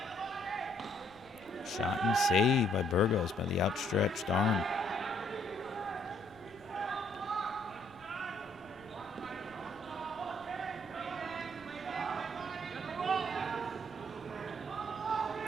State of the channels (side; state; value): left; noise; rumble, 27 dB below the sound